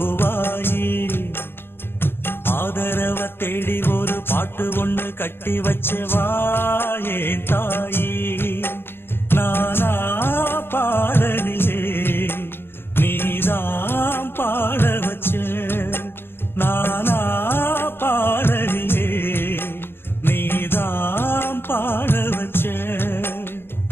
ஆதரவ தேடி ஒரு பாட்டு ஒண்ணு கட்டி வச்சவா ஏன் தாயி. நானா பாடலியே நீதான் பாட வச்ச. நானா பாடலியே நீதான் பாட வச்ச.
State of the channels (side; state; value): right; late; 0.11 ms